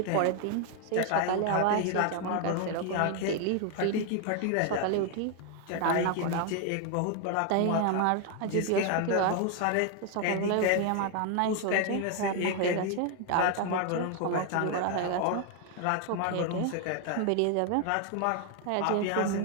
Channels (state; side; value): different; both; correlation 0.01